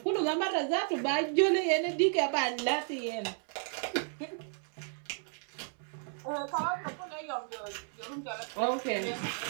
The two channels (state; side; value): silent; left; 55 dB below the other